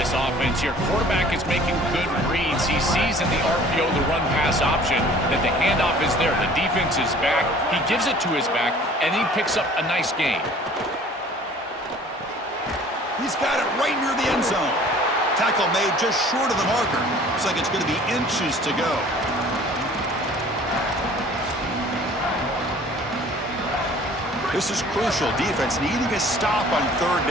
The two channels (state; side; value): normal; both; correlation 0.50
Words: offense here. Quarterback is making good reads. He sees in the RPO the run-pass option that the handoff is there. The defense is back. He gives it to his back, and he picks up a nice gain. He's got it right near the end zone. Tackle made just short of the marker. Looks like it's going to be inches to go. This is crucial. Defense needing a stop on third